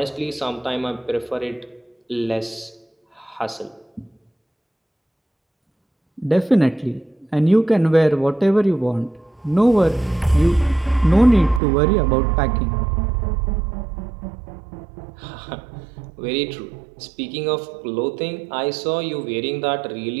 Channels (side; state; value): left; drops out; at 11.6 s